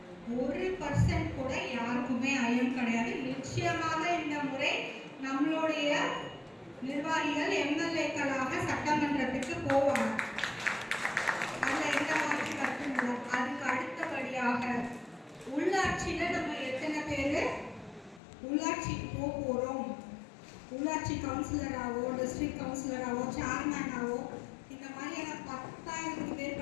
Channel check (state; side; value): drops out; right; at 18.2 s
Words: 1% கூட யாருக்குமே ஐயம் கிடையாது. நிச்சயமாக இந்த முறை நம்மளுடைய நிர்வாகிகள் எம்எல்ஏக்களாக சட்டமன்றத்துக்கு போவாங்க. அதுல எந்த மாதிரி கருத்தும் இல்லை. அதுக்கு அடுத்தபடியாக உள்ளாட்சியில நம்ம எத்தனை பேரு உள்ளாட்சிக்கு போறோம், உள்ளாட்சி கவுன்சிலராகவோ டிஸ்ட்ரிக்ட் கவுன்சிலராகவோ சேர்மேனாவோ இந்த மாதிரியான 10,000க்கு